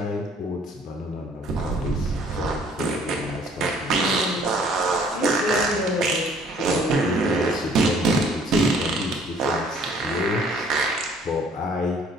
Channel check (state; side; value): normal; both; correlation 0.58